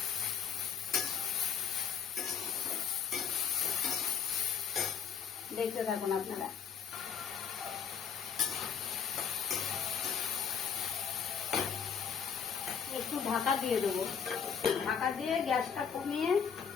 দেখতে থাকুন আপনারা। একটু ঢাকা দিয়ে দেবো, ঢাকা দিয়ে গ্যাসটা কমিয়ে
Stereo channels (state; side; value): quieter; right; 7.2 dB